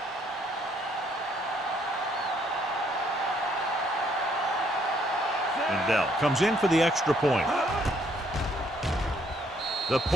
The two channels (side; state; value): both; normal; correlation 0.67